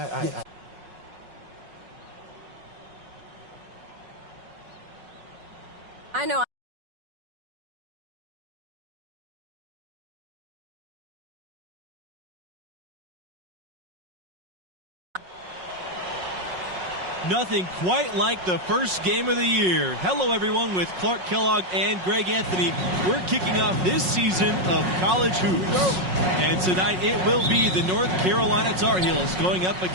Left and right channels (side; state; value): left; late; 5.5 ms